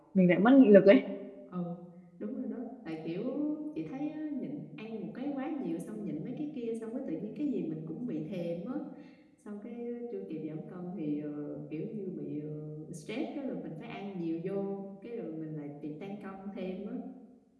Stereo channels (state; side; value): identical; both; correlation 1.00